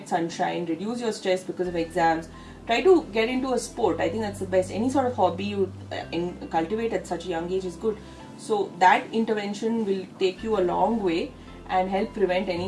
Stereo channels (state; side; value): identical; both; correlation 1.00